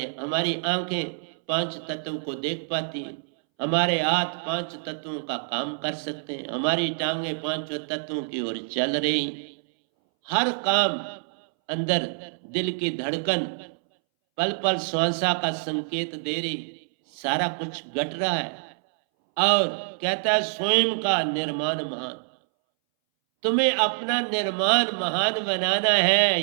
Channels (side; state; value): left; silent; 61 dB below the other